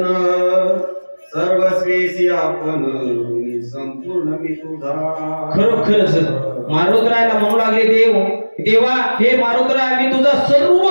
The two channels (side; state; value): both; inverted; correlation -1.00